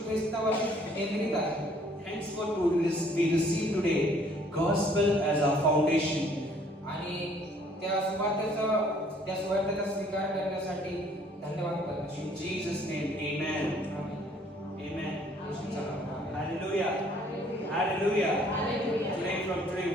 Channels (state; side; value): normal; both; correlation 0.60